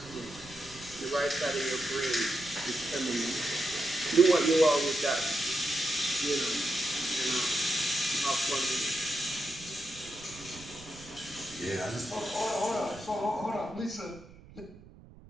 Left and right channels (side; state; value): right; noise; rumble, 20 dB below the sound